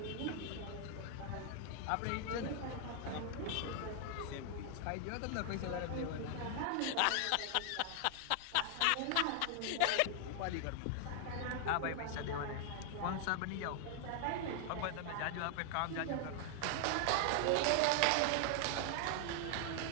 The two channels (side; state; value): both; different; correlation 0.00